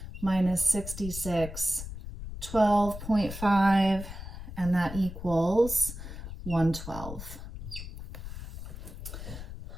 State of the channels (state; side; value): noise; left; rumble, 10 dB below the sound